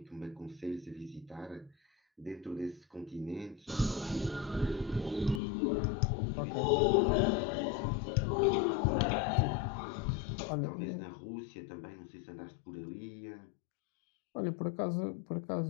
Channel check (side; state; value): right; drops out; at 5.4 s